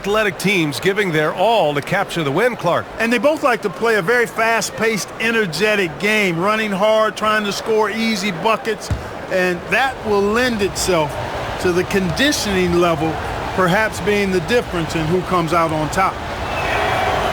teams giving their all to capture the win, Clark. And they both like to play a very fast-paced, energetic game, running hard, trying to score easy buckets, and that will lend itself to the conditioning level perhaps being the difference in who comes out on top.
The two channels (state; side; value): identical; both; correlation 1.00